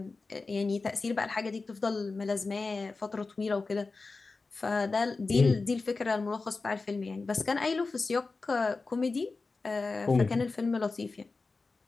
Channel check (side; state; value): right; quieter; 3.9 dB